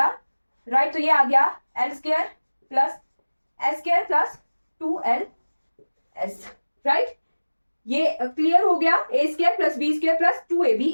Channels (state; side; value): inverted; both; correlation -1.00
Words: राइट। तो ये आ गया L square plus S square plus 2LS, right. ये क्लियर हो गया, A square plus B square plus 2AB,